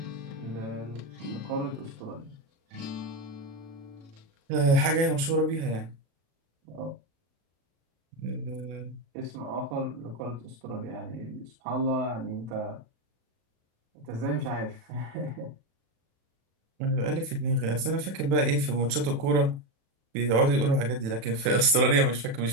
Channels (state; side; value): late; left; 36 ms